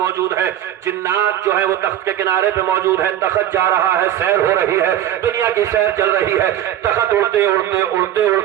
ہیں جنات جو ہیں وہ تخت کے کنارے پہ موجود ہیں. تخت جا رہا ہے سیر ہو رہی ہے دنیا کی سیر چل رہی ہے. تخت اڑتے اڑتے اڑتے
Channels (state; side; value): quieter; left; 11.9 dB